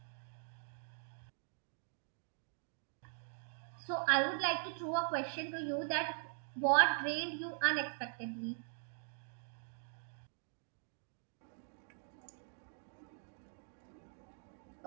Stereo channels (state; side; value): silent; left; digital silence